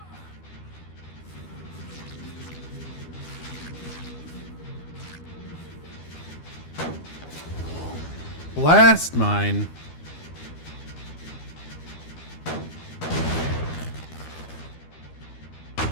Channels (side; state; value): right; late; 12 ms